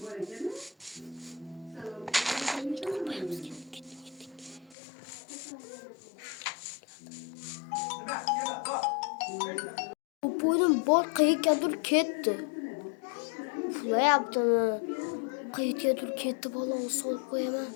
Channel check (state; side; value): drops out; right; at 4.8 s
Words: Bu boyun boy qayergadir ketdi. Pula yaptimi? Qayergadir ketdi, baloni solib qo'yaman.